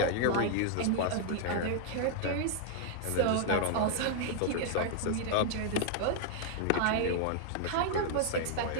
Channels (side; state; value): both; different; correlation 0.00